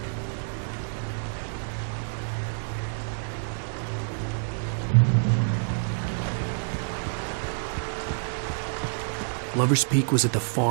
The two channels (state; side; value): silent; left; digital silence